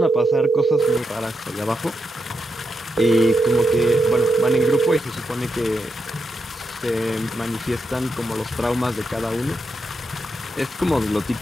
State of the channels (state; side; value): normal; both; correlation 0.84